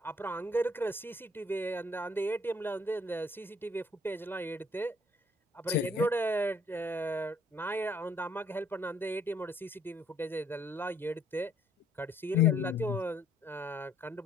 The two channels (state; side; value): normal; both; correlation 0.63